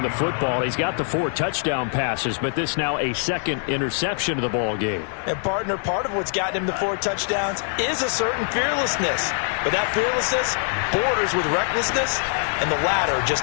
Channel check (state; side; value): silent; right; 59 dB below the other